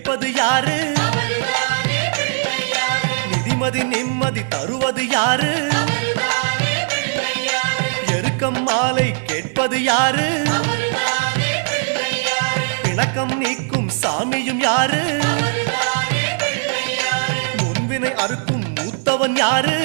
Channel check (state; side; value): silent; left; digital silence